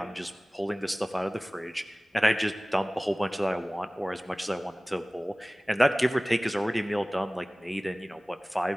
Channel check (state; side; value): normal; both; correlation 0.98